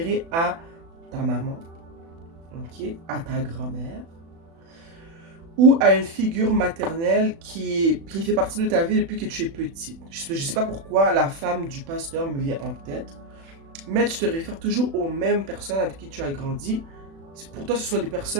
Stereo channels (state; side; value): late; left; 36 ms